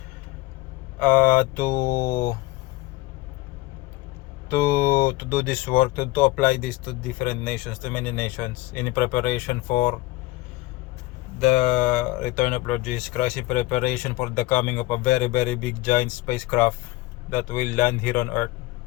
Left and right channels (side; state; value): right; quieter; 19.3 dB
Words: to do this work, to apply this to different nations, to many nations, in preparation for the return of Lord Jesus Christ, in preparation for the coming of a very, very big giant spacecraft that will land here on earth.